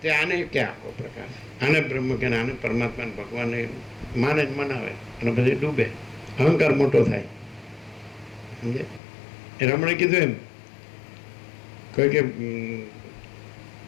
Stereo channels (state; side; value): drops out; right; at 9.0 s